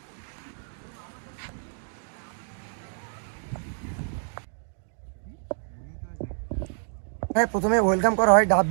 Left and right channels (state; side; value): silent; left; digital silence